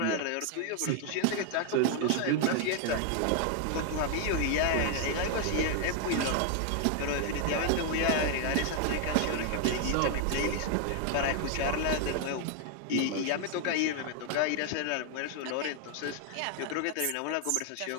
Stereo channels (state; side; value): different; both; correlation 0.00